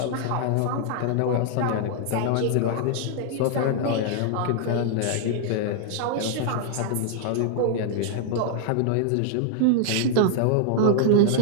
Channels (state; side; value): different; both; correlation -0.01